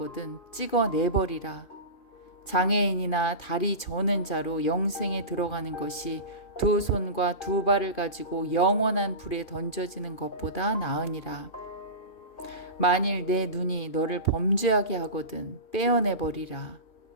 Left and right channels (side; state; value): right; late; 2.4 ms